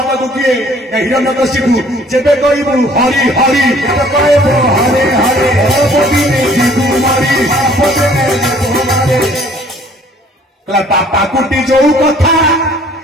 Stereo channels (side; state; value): both; normal; correlation 0.56